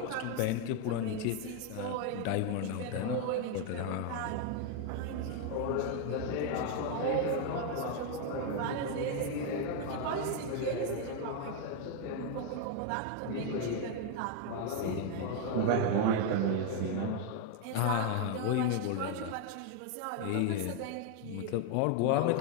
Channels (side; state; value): both; different; correlation 0.01